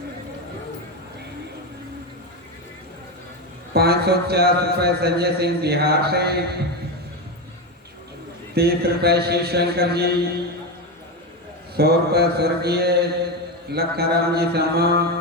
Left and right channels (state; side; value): normal; both; correlation 0.14